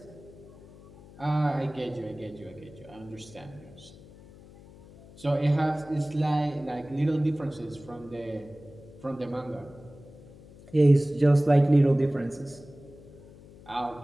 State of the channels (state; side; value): noise; left; hum, 21 dB below the sound